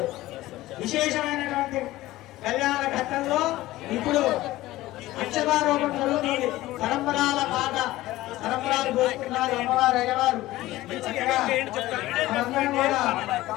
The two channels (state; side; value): quieter; right; 16.9 dB